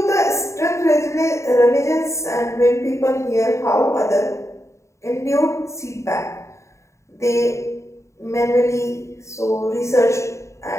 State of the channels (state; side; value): late; right; 0.14 ms